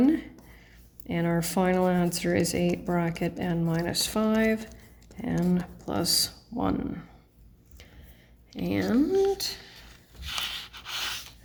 And our final answer is 8 bracket n minus 5 n plus 1.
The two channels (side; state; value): both; identical; correlation 1.00